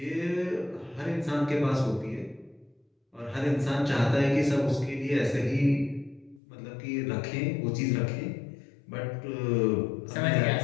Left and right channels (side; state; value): right; drops out; at 6.4 s